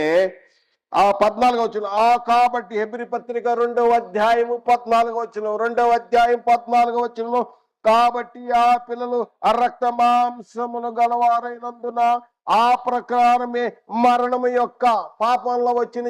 ఆ 14వ వచనం, కాబట్టి హెబ్రీ పత్రిక 2వ అధ్యాయము 14వ వచనం, 2వ అధ్యాయం 14వ వచనంలో, కాబట్టి ఆ పిల్లలు రక్త మాంసమును గలవారైనందున ఆ ప్రకారమే మరణము యొక్క, పాపంలో వచ్చిన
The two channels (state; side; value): identical; both; correlation 1.00